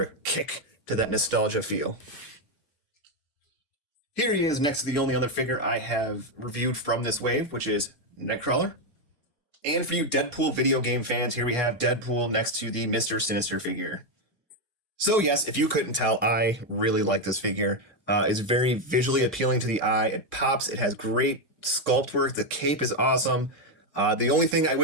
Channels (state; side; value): normal; both; correlation 0.05